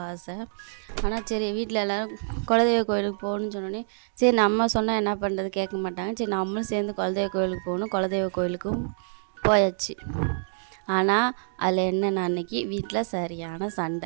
ஆசை. ஆனால் சரி வீட்டில் எல்லோரும் குலதெய்வ கோயிலுக்கு போகணுன்னு சொன்னோடனே சரி நம்ம சொன்னால் என்ன பண்ணுறது கேட்க மாட்டாங்க. சரி நம்மளும் சேர்ந்து குலதெய்வ கோயிலுக்கு போகணும். குலதெய்வ கோயிலுக்கும் போயாச்சு. ஆனால் அதில் என்னென்ன அன்றைக்கி வீட்டில் சரியான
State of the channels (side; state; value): left; silent; digital silence